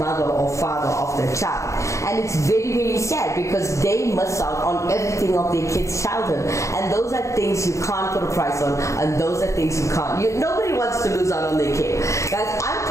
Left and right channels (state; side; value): late; right; 0.15 ms